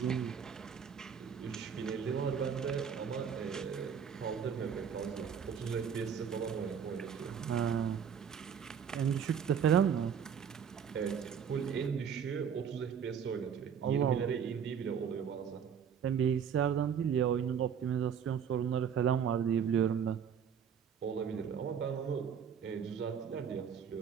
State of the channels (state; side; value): quieter; left; 7.6 dB